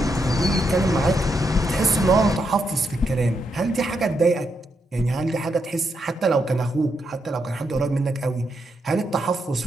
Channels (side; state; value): both; normal; correlation 0.81